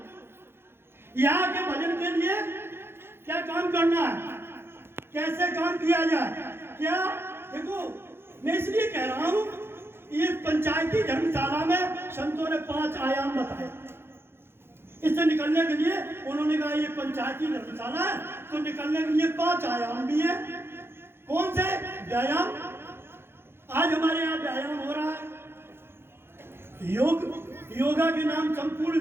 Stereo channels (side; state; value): left; late; 0.11 ms